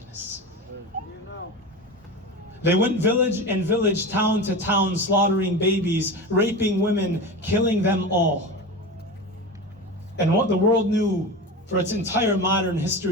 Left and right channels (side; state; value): both; normal; correlation 0.26